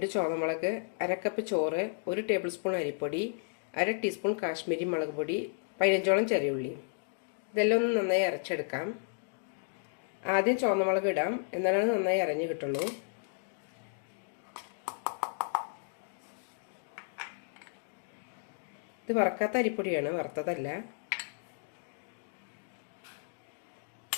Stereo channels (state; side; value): silent; right; digital silence